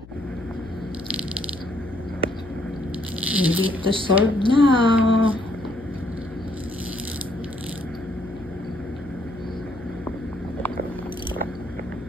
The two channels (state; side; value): noise; left; hum, 19 dB below the sound